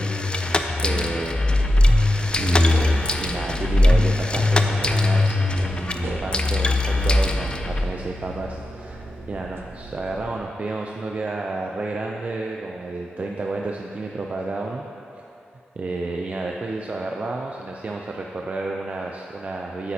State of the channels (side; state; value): both; normal; correlation 0.88